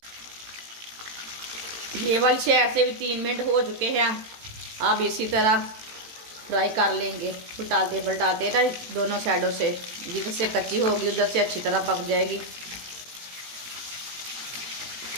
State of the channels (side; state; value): left; late; 18 ms